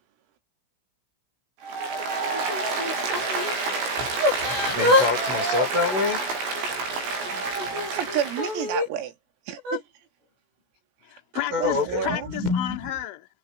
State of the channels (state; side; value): late; left; 17 ms